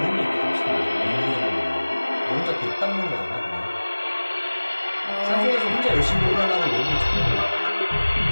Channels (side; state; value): both; inverted; correlation -1.00